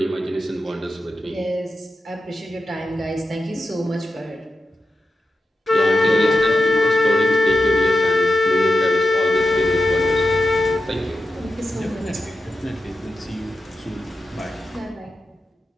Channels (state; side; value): normal; both; correlation 0.89